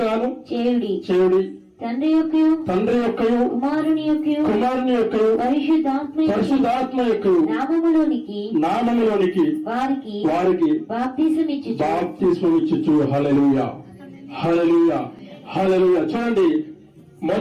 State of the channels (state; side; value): identical; both; correlation 1.00